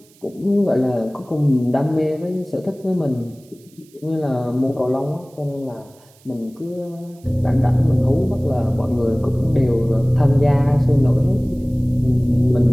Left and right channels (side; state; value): right; noise; hiss, 30 dB below the sound